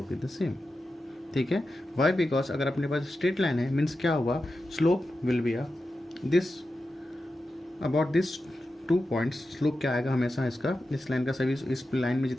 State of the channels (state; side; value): normal; both; correlation 0.91